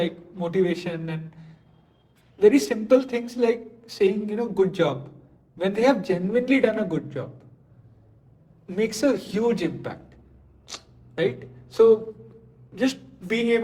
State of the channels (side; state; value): both; identical; correlation 1.00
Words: motivation and very simple things like saying, good job. When they have genuinely done a good job, makes a huge impact, right? So just being